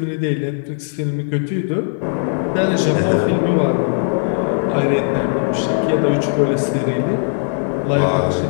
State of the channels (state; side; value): silent; right; digital silence